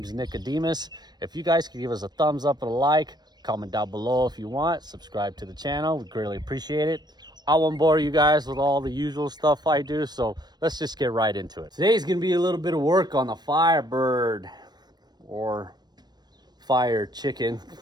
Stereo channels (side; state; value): left; late; 0.20 ms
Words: Nicodemus. If you guys could give us a thumbs up and a like, comment down below if you want, subscribe to the channel, we greatly appreciate it. I won't bore you guys with all the usual stuff I do, so let's just get right into it. Today's gonna be a little bit of work on the Firebird, or Fire Chicken,